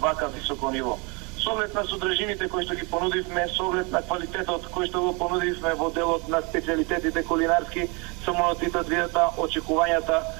високо ниво. Со оглед на содржините кои што ги понудивме, со оглед на квалитетот кој што го понудивме во делот на специјалитетите кулинарски, Самунот и Татлијата, очекувањата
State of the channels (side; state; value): left; quieter; 29.9 dB